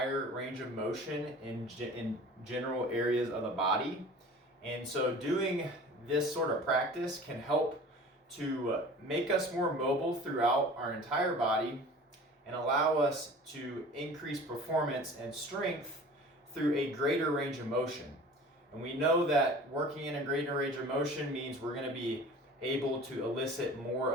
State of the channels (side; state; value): both; normal; correlation 0.42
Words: range of motion in general areas of the body. And so doing this sort of practice can help to make us more mobile throughout our entire body and allow us to increase performance and strength through a greater range of motion. And we know that working in a greater range of motion means we're going to be able to elicit more